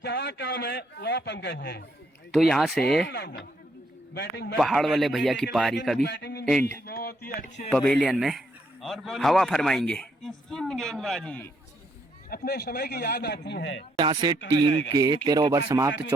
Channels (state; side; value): normal; both; correlation 0.73